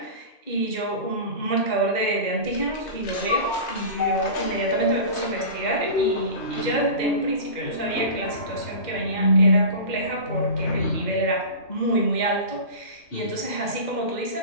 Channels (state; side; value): late; right; 2.1 ms